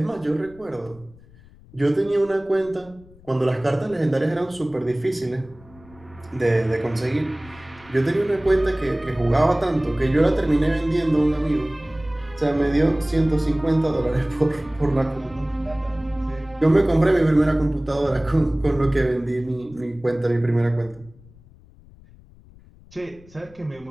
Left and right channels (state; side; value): noise; left; rumble, 24 dB below the sound